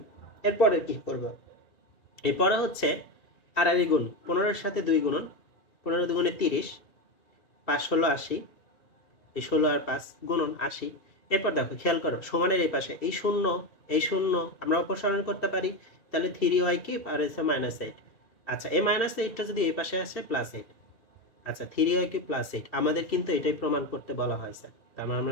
এরপরে কি করব? এরপরে হচ্ছে আড়াআড়ি গুণ 15 সাথে 2 গুণন, 15 দুগুণে 30, 5 ষোলো 80, এই 16 আর 5 গুণন 80। এরপর দেখো খেয়াল করো সমানের এই পাশে এই শূন্য আমরা অপসারণ করতে পারি, তাহলে 3y³ আর হচ্ছে -8। আচ্ছা এই -8টা যদি এই পাশে আসে +8। আচ্ছা 3y³ +8 আমাদের কিন্তু এটাই প্রমাণ করতে বলা হয়েছে, তার মানে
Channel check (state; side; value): late; right; 2.6 ms